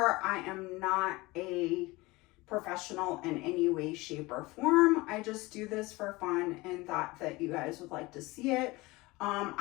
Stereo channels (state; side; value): quieter; right; 21.9 dB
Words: I am not a professional in any way, shape, or form. I just do this for fun and thought that you guys would like to see it.